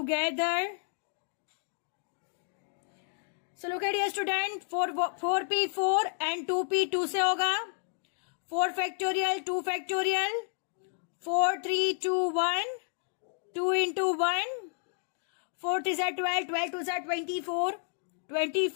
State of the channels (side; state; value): right; silent; digital silence